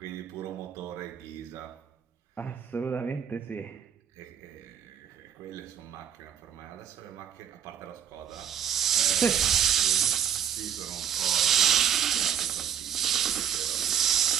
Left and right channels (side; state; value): left; quieter; 8.8 dB